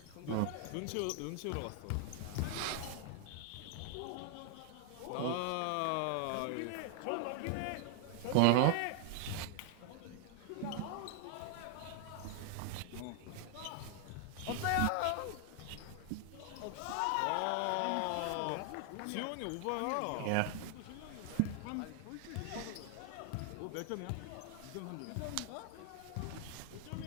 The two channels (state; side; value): different; both; correlation 0.00